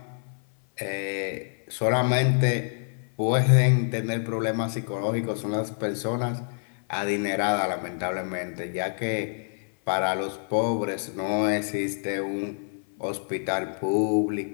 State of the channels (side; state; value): right; silent; 58 dB below the other